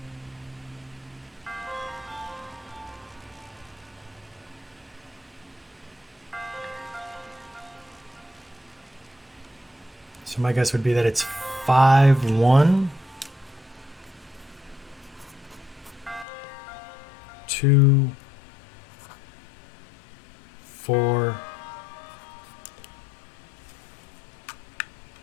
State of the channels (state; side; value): drops out; right; at 16.2 s